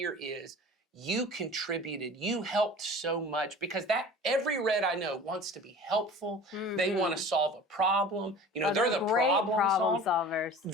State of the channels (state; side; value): normal; both; correlation 0.41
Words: is you contributed, you helped so much, because that every red I know wants to be helpful. They want to solve a problem. They're the problem solvers.